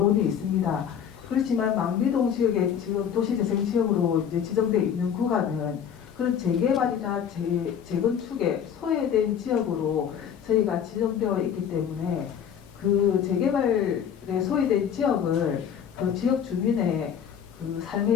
있습니다. 그렇지만 망미동 지역에 지금 도시재생 지역으로 이제 지정되어 있는 구간은 그런 재개발이나 재건축에 소외된 지역으로 저희가 지정되어 있기 때문에 그 재개발에 소외된 지역을 그 지역 주민의 그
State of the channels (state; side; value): quieter; right; 8.4 dB